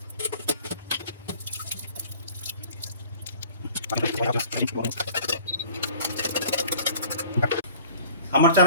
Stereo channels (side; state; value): both; inverted; correlation -0.47